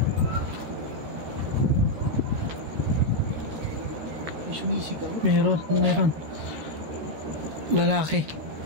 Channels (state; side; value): late; left; 13 ms